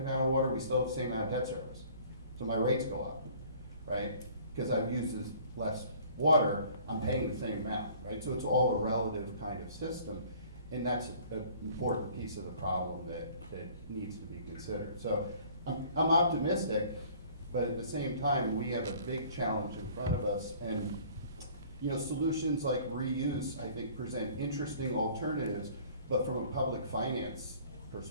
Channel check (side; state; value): both; inverted; correlation -0.52